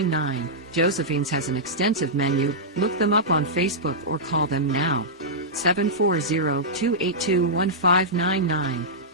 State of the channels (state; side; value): normal; both; correlation -0.12